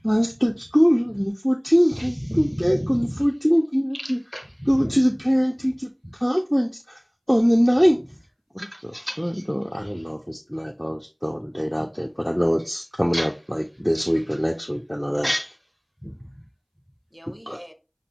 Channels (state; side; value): identical; both; correlation 1.00